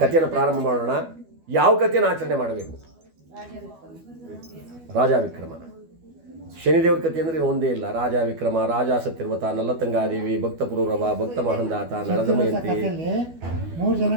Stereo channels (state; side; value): late; left; 12 ms